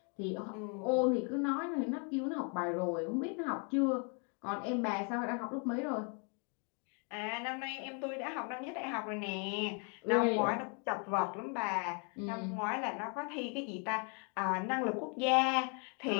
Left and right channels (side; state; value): right; quieter; 37.8 dB